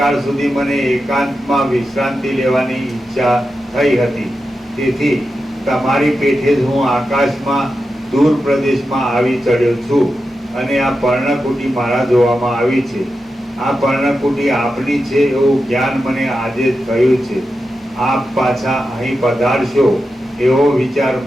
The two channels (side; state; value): both; normal; correlation 0.90